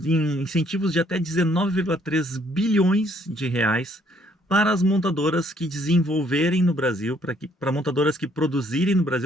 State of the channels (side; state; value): both; normal; correlation 0.65